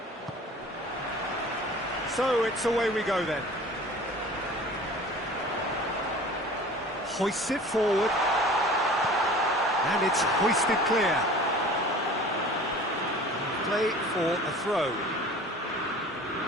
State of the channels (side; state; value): both; normal; correlation 0.43